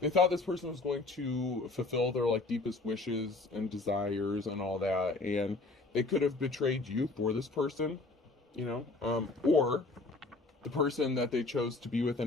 thought this person was going to fulfill their like deepest wishes and desires and all that, and they could have betrayed you for this person, or the person that they chose to be with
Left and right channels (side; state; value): right; quieter; 3.3 dB